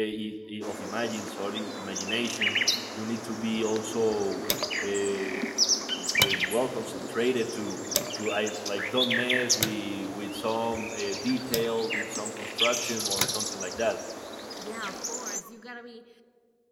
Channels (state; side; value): identical; both; correlation 1.00